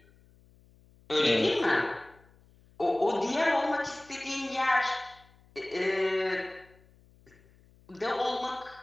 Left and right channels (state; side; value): noise; left; hum, 29 dB below the sound